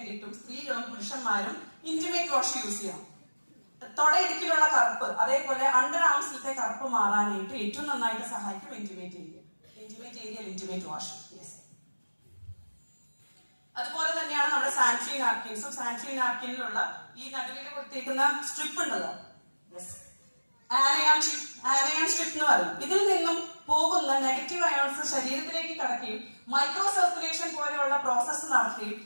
സ്ത്രീകളും പുരുഷന്മാരും ഇന്റിമേറ്റ് വാഷ് യൂസ് ചെയ്യണം. തൊടയിടുക്കിലുള്ള കറുപ്പ്, അതേപോലെ അണ്ടർ ആംസിലത്തെ കറുപ്പ് മാറാനായിട്ട് ഏറ്റവും നന്നായിട്ട് സഹായിക്കും ഇന്റിമേറ്റ് ഏരിയ. Intimate wash. അതുപോലെ തന്നെയാണ് നമ്മുടെ സാനിറ്ററി നാപ്കിൻസും. സാനിറ്ററി നാപ്കിനിലുള്ള ഈ നടുവിൽ കൊടുത്തേക്കുന്ന സ്ട്രിപ്പ് ഉണ്ടല്ലോ, ആനയാൻ സ്ട്രിപ്പ് എന്ന് പറയും. ഇതിൽ നിന്നും പോകുന്ന നെഗറ്റീവ് അയോൺസ് ശരീരത്തിലേക്ക് കടക്കുകയും മൈക്രോ സർക്കുലേഷൻ പോലെയുള്ള പ്രോസസ്സ് നടത്തുകയും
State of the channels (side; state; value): both; inverted; correlation -1.00